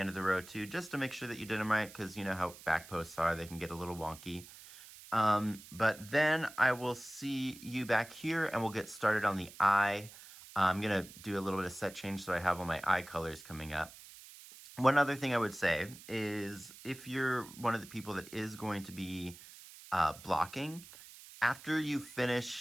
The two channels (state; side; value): noise; right; hiss, 18 dB below the sound